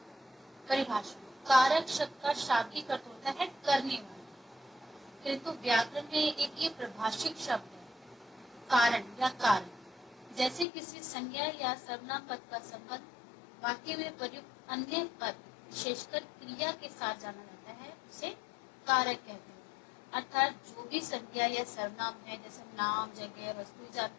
परिभाषा। कारक शब्द का शाब्दिक अर्थ होता है करने वाला, किंतु व्याकरण में एक ये प्रभाषिक शब्द है, कारण या कारण। जैसे किसी संज्ञा या सर्वनाम पद का संबंध वाक्य में प्रयुक्त अन्य पद विशेषकर क्रिया के साथ जाना जाता है, उसे कारक कहते हैं। अर्थात जो भी संज्ञा या सर्वनाम है, जैसे नाम, जगह, वस्तु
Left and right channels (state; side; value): drops out; right; at 10.7 s